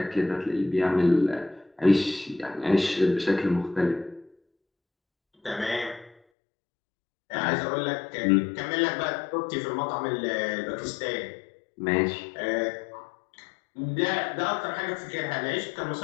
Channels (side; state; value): right; drops out; at 6.2 s